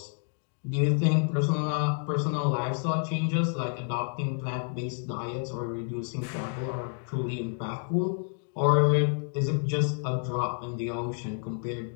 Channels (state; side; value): silent; right; 58 dB below the other